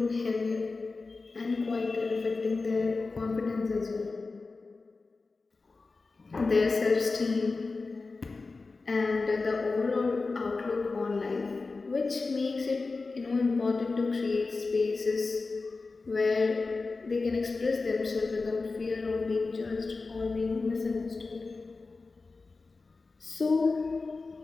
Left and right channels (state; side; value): quieter; right; 3.9 dB